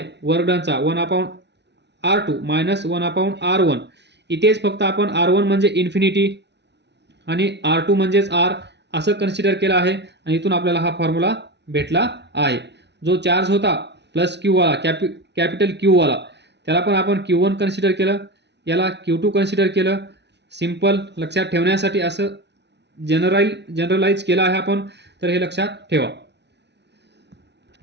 वर्कडनचा 1/r2 मायनस 1/r1, इथेच फक्त आपण r1 म्हणजे इन्फिनिटी आणि R2 म्हणजेच R असं कन्सिडर केलं आहे आणि इथून आपल्याला हा फॉर्म्युला भेटला आहे. जो चार्ज होता प्लस क्यू वाला कॅपिटल क्यू वाला त्याला पण आपण Q1 कन्सिडर केलं, याला Q2 कन्सिडर केलं. सिंपल लक्षात ठेवण्यासाठी असं जनरलाइज केलं आहे आपण, तर हे लक्षात ठेवा.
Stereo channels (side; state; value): left; late; 0.50 ms